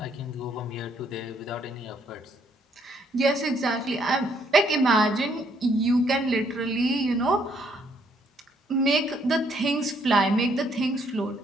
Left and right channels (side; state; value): both; normal; correlation 0.69